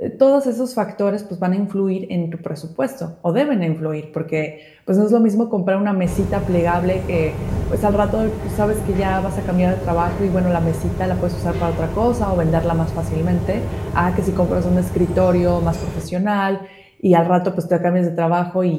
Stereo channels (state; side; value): identical; both; correlation 1.00